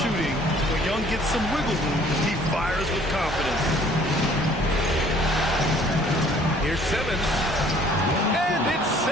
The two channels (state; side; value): normal; both; correlation 0.56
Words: when Young gets some wiggle room, he fires with confidence. Here's Simmons. And it's